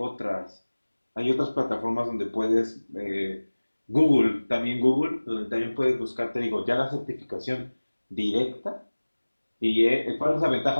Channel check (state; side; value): inverted; both; correlation -1.00